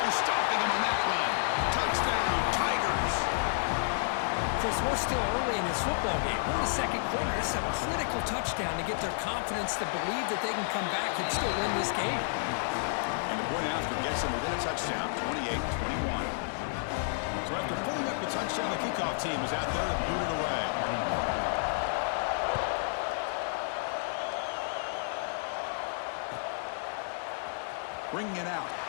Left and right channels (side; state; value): right; silent; digital silence